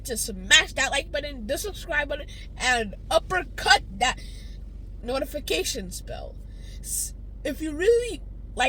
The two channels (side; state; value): both; identical; correlation 1.00